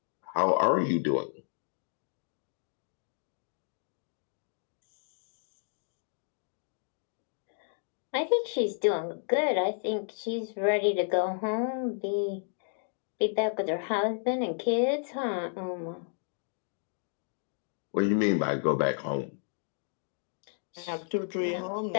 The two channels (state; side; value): silent; right; digital silence